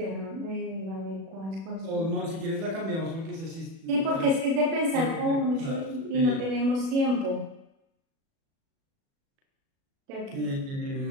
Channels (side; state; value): left; late; 36 ms